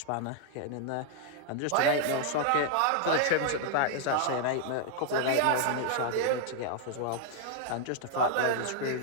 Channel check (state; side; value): different; both; correlation 0.00